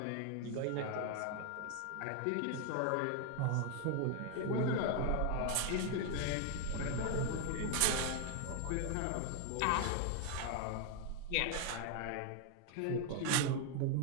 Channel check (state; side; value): different; both; correlation 0.01